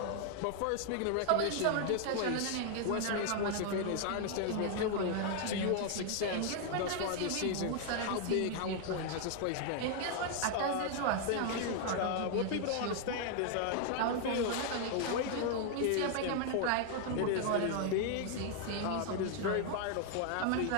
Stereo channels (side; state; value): both; different; correlation 0.00